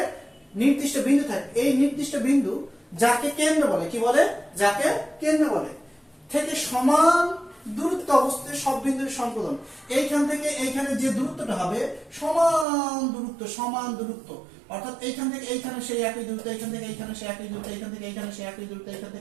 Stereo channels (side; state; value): left; drops out; at 12.7 s